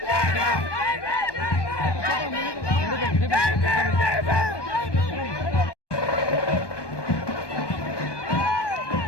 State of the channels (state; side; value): late; right; 1.2 ms